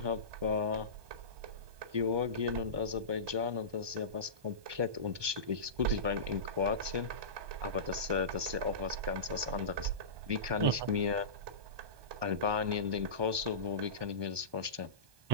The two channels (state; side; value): late; left; 1.2 ms